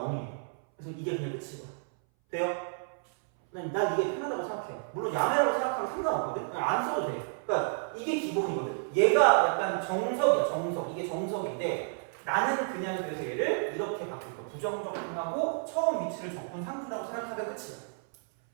그래서 이게 그냥 끝이고. 돼요? 난 이게 편하다고 생각해요. 물론 야매라고 생각하면 상관없거든. 그냥 안 써도 돼. 그러니까 이게 기본이거든. 얘가 약간 정석이야, 정석. 이게 정석인데 나는 그냥 그래서 얘를 이렇게 바꿀 거야. 부정적분하고 처음 위치를 적분 상수라고 생각하면 끝이야.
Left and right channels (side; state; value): left; silent; 57 dB below the other